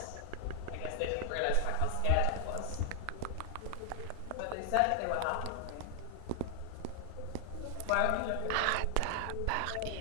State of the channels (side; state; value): both; different; correlation 0.00